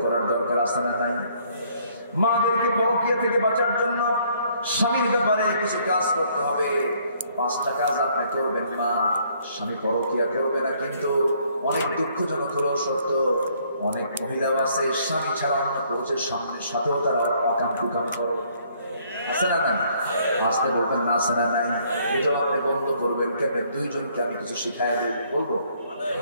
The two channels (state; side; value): inverted; both; correlation -0.65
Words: করার দরকার আছে না নাই? মাদেরকে পরকিয়া থেকে বাঁচার জন্য স্বামীর ব্যাপারে কিছু কাজ করতে হবে। 5টা কাজ আপনি করবেন। মা, স্বামী পরকিয়া করবে না, কিন্তু অনেক দুঃখজনক হলেও সত্য, অনেক মহিলাও আছে স্বামী ছাড়া অন্য পুরুষের সাথেও তারা অকাম কুকাম করে। আছে না নাই? আসতে বলবেন না, আছে না নাই? এটাও আপনি বন্ধ করবেন। কেন? 2 জনকে আমি কিছু শিখাই দিই, বলবো?